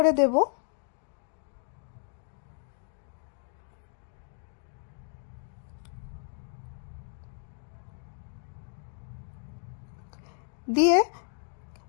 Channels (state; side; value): silent; right; digital silence